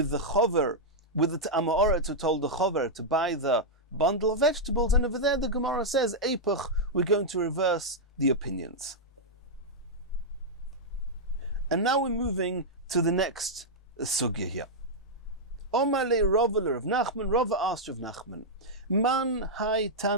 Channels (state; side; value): normal; both; correlation -0.06